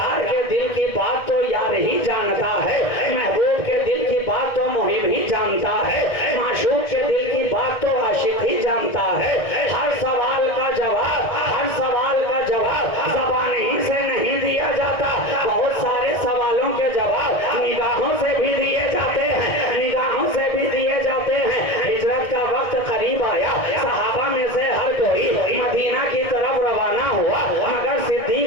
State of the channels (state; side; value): late; right; 1.7 ms